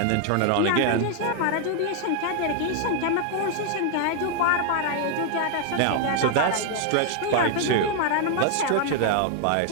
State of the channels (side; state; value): both; different; correlation 0.00